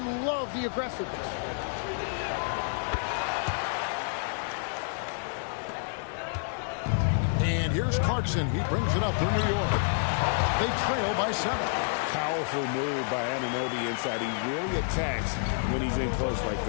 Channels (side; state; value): right; silent; digital silence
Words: the aggressiveness. And here's Clarkson. He brings it up for New York. They trail by 7. Powerful move by Anunoby inside. He really attacks when he's in close like